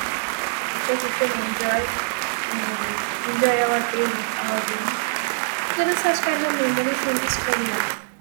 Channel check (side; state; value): left; silent; digital silence